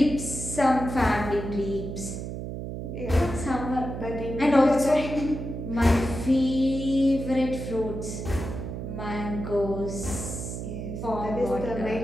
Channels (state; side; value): noise; right; hum, 6 dB below the sound